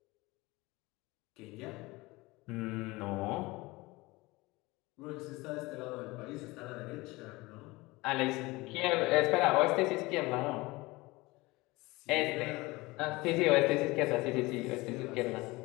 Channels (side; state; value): right; quieter; 22.0 dB